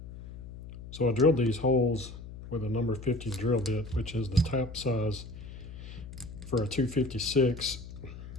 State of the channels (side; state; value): left; noise; hum, 13 dB below the sound